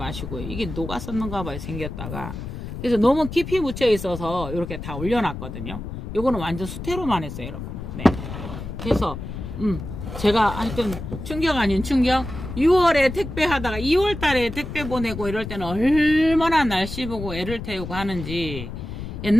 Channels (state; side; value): noise; left; rumble, 8 dB below the sound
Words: 이게 녹았었는가 봐요, 생겼다가. 그래서 너무 깊이 묻혀 있어서 이렇게 다 올려놨거든요. 요거는 완전 수태로만 했어요, 여러분. 네. 그래서 제가 하여튼 충격 아닌 충격. 6월에 택배 하다가 2월 달에 택배 보내고 이럴 때는 얼마나 날씨 보고 애를 태우고 하는지.